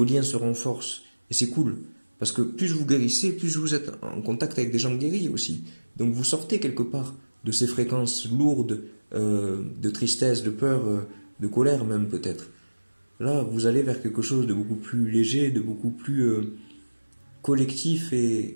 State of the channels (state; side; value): inverted; both; correlation -1.00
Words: liens se renforcent. Et c'est cool. Parce que plus vous guérissez, plus vous êtes en contact avec des gens guéris aussi. Donc vous sortez quelque part de ces fréquences lourdes de tristesse, de peur, de colère même peut-être. Là, vous allez vers quelque chose de beaucoup plus léger, de beaucoup plus collectif